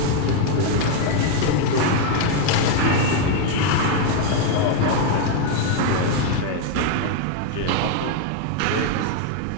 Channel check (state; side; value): different; both; correlation 0.01